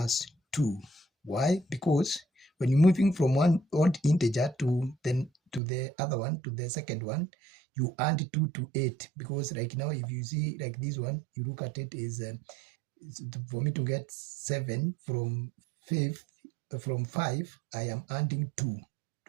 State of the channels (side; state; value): left; drops out; at 5.6 s